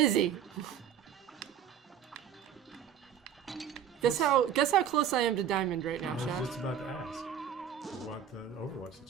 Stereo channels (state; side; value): quieter; left; 9.1 dB